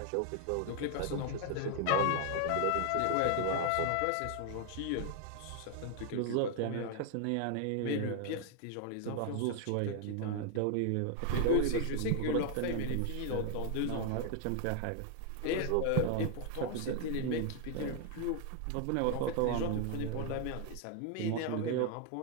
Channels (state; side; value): different; both; correlation 0.00